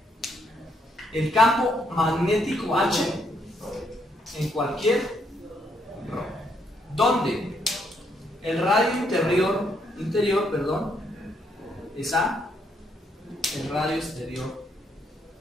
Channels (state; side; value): normal; both; correlation 0.73